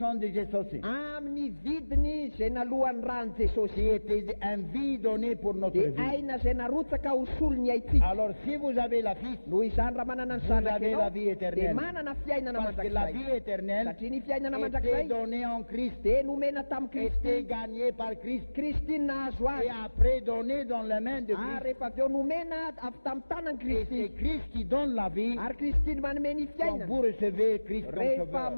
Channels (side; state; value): both; inverted; correlation -1.00